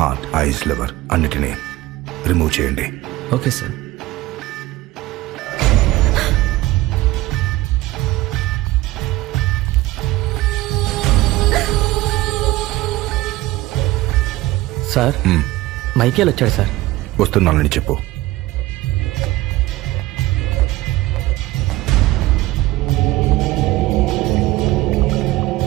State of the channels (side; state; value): left; quieter; 17.3 dB